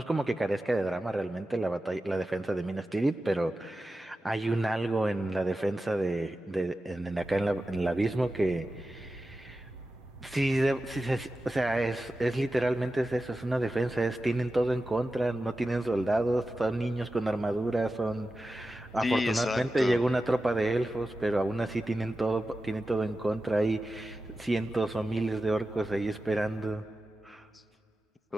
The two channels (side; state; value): both; normal; correlation 0.93